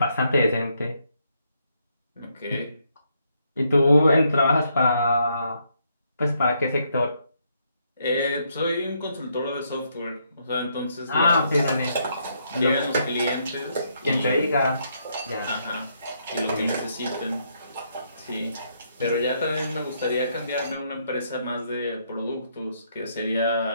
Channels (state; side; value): inverted; both; correlation -0.75